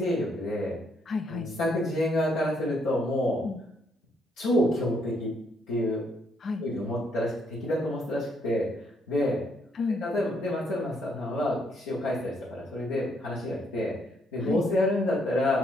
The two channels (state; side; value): normal; both; correlation 0.72